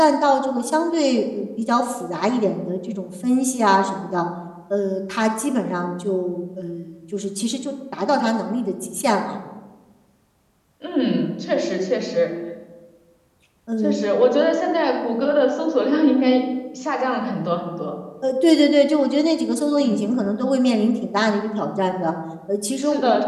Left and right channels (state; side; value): identical; both; correlation 1.00